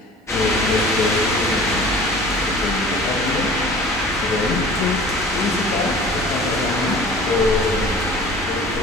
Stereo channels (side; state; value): both; normal; correlation 0.44